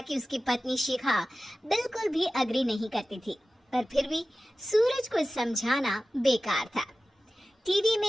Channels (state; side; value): normal; both; correlation 0.95